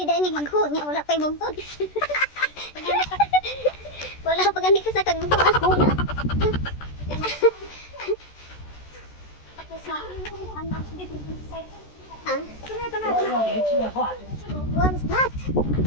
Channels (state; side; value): late; right; 14 ms